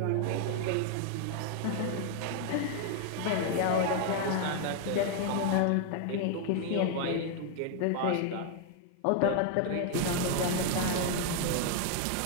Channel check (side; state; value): both; different; correlation 0.00